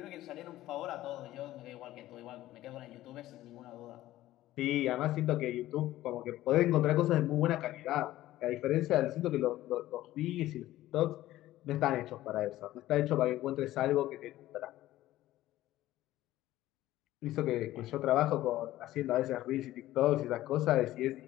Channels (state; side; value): quieter; right; 15.2 dB